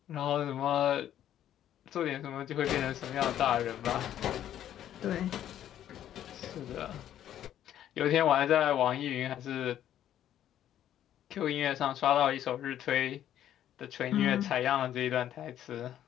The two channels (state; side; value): quieter; right; 11.2 dB